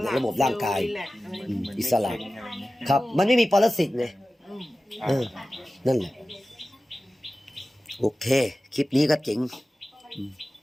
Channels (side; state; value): both; normal; correlation 0.95